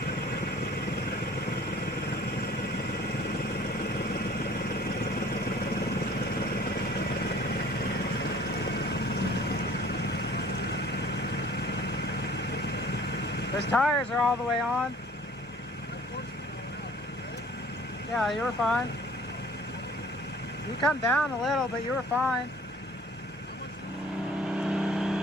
Those tires are all the way on. Yeah, you were fine. You come down a little, but you were fine.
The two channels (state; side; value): normal; both; correlation 0.51